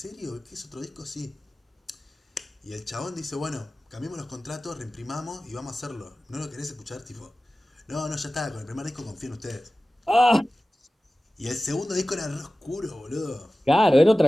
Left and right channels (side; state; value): both; normal; correlation 0.96